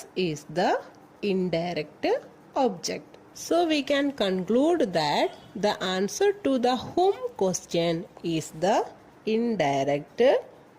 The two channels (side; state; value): both; identical; correlation 1.00